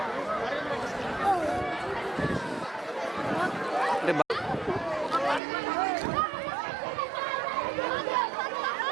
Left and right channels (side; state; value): left; drops out; at 5.4 s